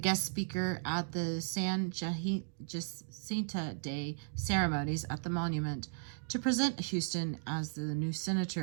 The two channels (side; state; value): left; silent; digital silence